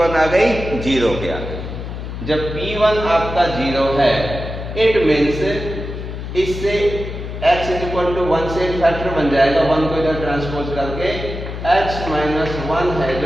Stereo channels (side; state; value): left; noise; hum, 8 dB below the sound